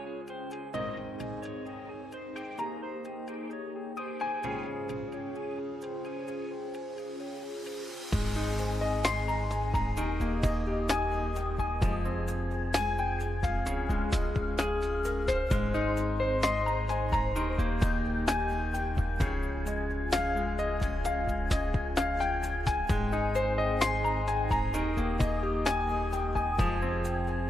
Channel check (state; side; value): normal; both; correlation 0.87